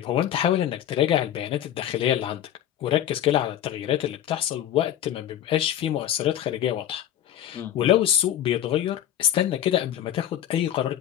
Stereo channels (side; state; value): right; quieter; 11.3 dB